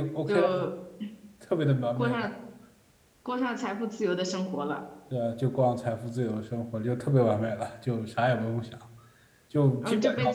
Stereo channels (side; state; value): both; identical; correlation 1.00